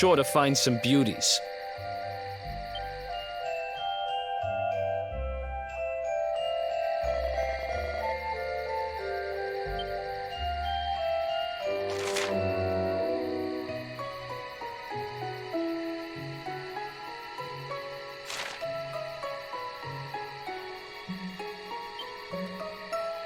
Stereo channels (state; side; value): identical; both; correlation 1.00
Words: to find some beauties.